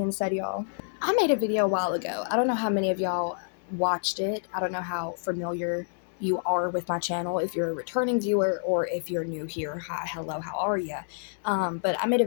said, y'all, I made a video a while ago. I don't know how many of y'all watched it. I don't know how familiar you are with my channel, if you're a returning viewer or if you're new here. Hi, hello, how are you? But I made a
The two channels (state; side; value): silent; right; digital silence